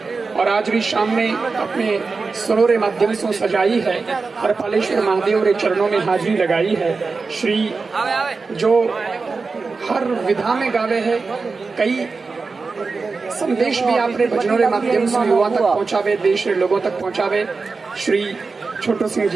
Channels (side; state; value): left; quieter; 4.3 dB